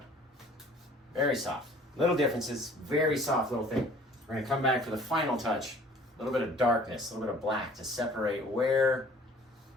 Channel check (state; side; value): normal; both; correlation 0.52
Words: Very soft. Little differences, very soft little thing. We're going to come back for the final touch. A little bit of darkness, a little bit of black to separate where